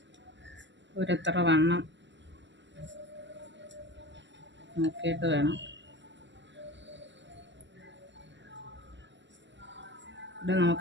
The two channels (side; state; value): left; late; 0.53 ms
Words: ഒരെത്ര വണ്ണം നോക്കിയിട്ട് വേണം. ഇവിടെ